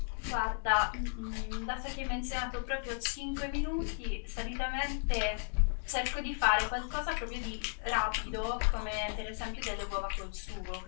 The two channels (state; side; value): silent; right; digital silence